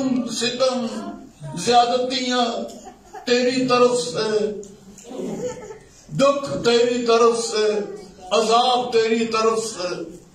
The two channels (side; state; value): both; identical; correlation 1.00